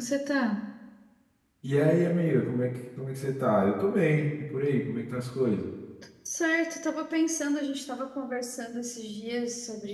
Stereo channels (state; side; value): identical; both; correlation 1.00